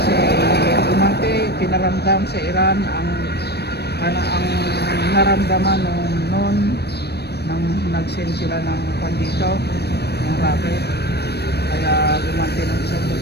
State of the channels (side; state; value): right; late; 0.47 ms